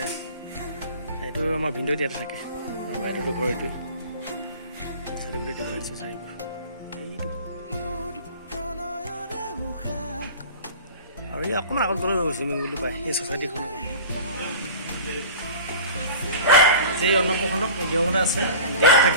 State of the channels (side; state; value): both; inverted; correlation -0.39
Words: এইটো আমাৰ ভিন্দ ইয়াতে থাকে বাইদেউটো ঘৰ এইটোৱে চাইডে গোটেই দেখুৱাই দিছোঁ চাৰিবোৰ এইটো আৰু এই অকণমান আগত গ'লে চুইমিং পুলটো পায় এই ছ'চাইটিখনৰ এই অন্নপ্ৰসন্ন নিয়মতে আছে ডেট